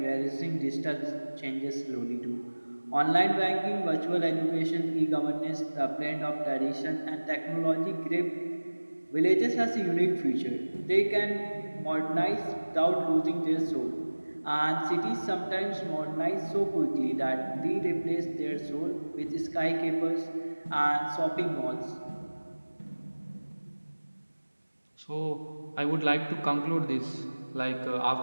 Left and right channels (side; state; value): both; inverted; correlation -1.00